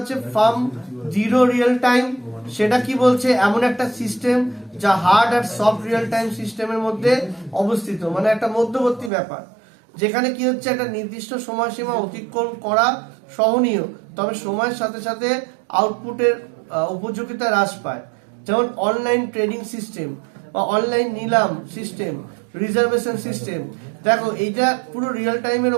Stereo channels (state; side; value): drops out; left; at 9.1 s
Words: ফার্ম জিরো রিয়েল টাইম, সেটা কি বলছে, এমন একটা সিস্টেম যা হার্ড আর সফট রিয়েল টাইম সিস্টেমের মধ্যে অবস্থিত, মানে একটা মধ্যবর্তী ব্যাপার, যেখানে কি হচ্ছে একটা নির্দিষ্ট সময়সীমা অতিক্রম করা সহনীয়, তবে সময়ের সাথে সাথে আউটপুটের উপযোগিতা হ্রাস পায়। যেমন অনলাইন ট্রেডিং সিস্টেম বা অনলাইন নিলাম সিস্টেম, রিজার্ভেশন সিস্টেম। দেখো এইটা পুরো রিয়েল টাইমের